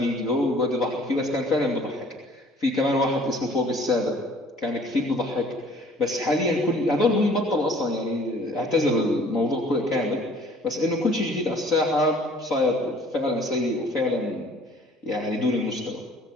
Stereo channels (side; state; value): both; normal; correlation 0.54